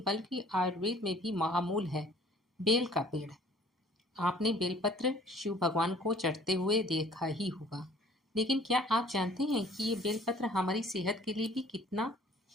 बल्कि आयुर्वेद में भी महामूल है, बेल का पेड़। आपने बेलपत्र शिव भगवान को चढ़ते हुए देखा ही होगा, लेकिन क्या आप जानते हैं कि ये बेलपत्र हमारी सेहत के लिए भी कितना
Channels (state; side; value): normal; both; correlation 0.54